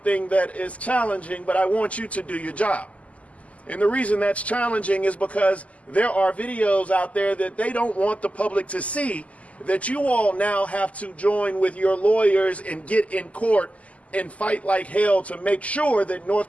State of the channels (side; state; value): right; late; 0.068 ms